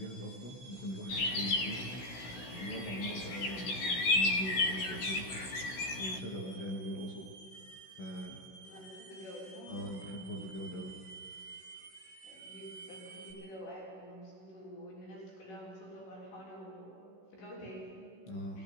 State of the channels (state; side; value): late; right; 16 ms